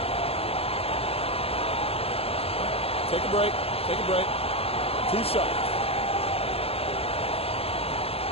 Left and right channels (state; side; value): late; right; 0.29 ms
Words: Take a break. Take a break. 2 shots.